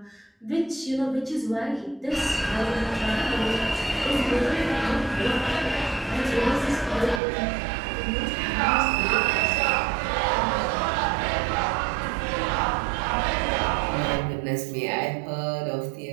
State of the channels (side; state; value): left; drops out; at 7.2 s